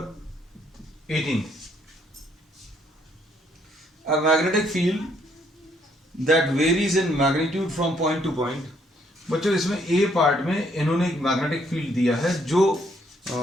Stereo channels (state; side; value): normal; both; correlation 0.69